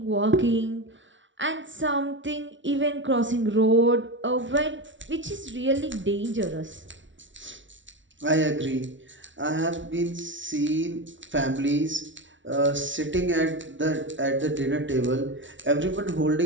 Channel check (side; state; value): left; late; 0.55 ms